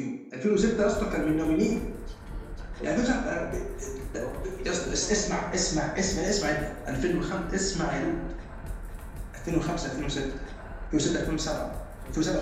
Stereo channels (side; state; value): both; identical; correlation 1.00